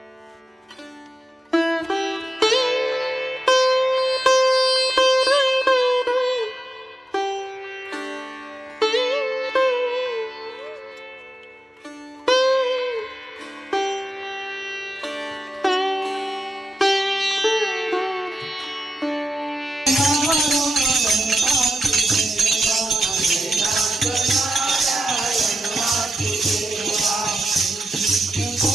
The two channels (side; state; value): both; normal; correlation 0.90